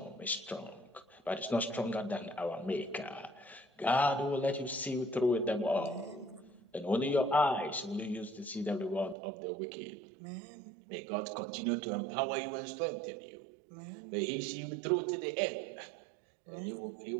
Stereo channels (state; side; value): drops out; left; at 9.2 s